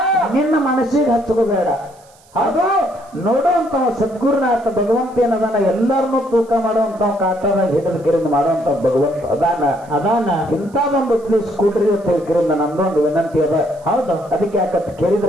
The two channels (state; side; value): noise; right; hiss, 29 dB below the sound